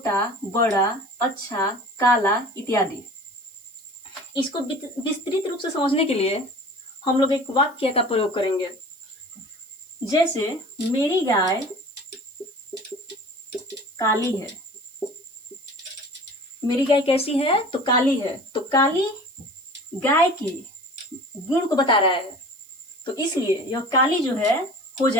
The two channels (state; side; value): noise; right; hiss, 26 dB below the sound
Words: बड़ा, अच्छा, काला इत्यादि। इसको विस्तृत रूप से समझने के लिए हम लोग एक वाक्य का प्रयोग करेंगे। जैसे मेरी गाय काली है। मेरी गाय कैसी है? तो काली है। तो काली गाय की गुण को बता रहा है, तो इसलिए यह काली जो है हो